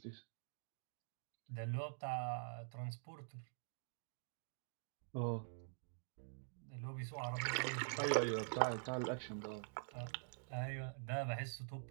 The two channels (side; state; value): left; silent; digital silence